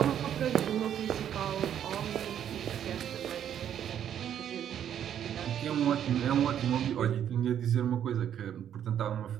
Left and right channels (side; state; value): left; quieter; 9.7 dB